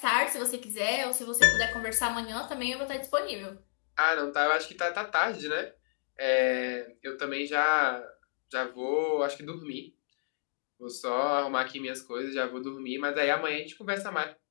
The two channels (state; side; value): silent; right; digital silence